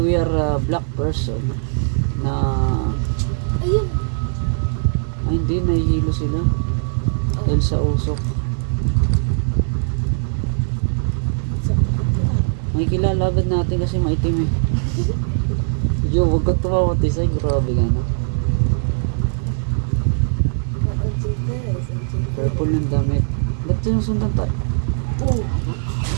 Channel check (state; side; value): silent; left; digital silence